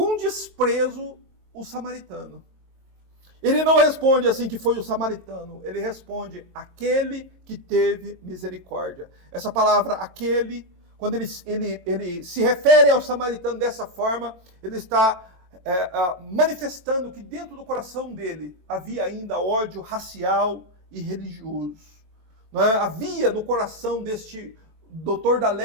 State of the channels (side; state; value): left; late; 22 ms